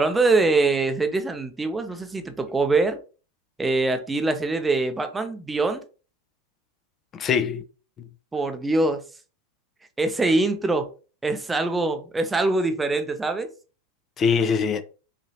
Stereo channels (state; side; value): normal; both; correlation 0.73